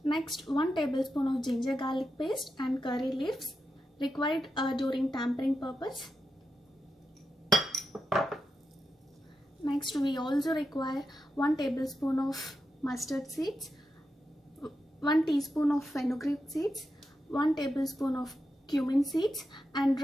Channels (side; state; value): both; normal; correlation 0.87